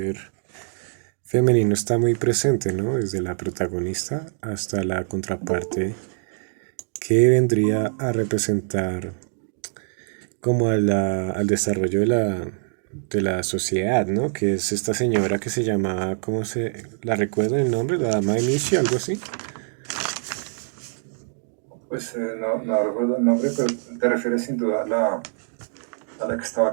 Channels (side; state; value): left; silent; 63 dB below the other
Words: femenino está muy presente, ¿no? Desde la protagonista hasta la contraparte que vendría a representar como al desarrollo de la sociedad, ¿no? Que es esta señora que se llamaba, ¿cómo se la recuerdo el nombre? La dama de Michi, algo así. pues no recuerdo el nombre, pero te refieres sin duda a la que estaba a